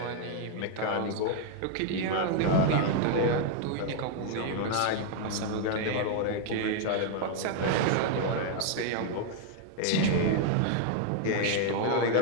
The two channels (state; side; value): different; both; correlation 0.00